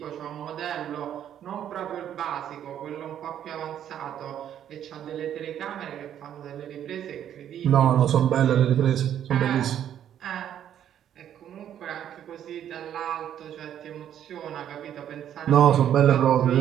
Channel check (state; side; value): quieter; left; 10.2 dB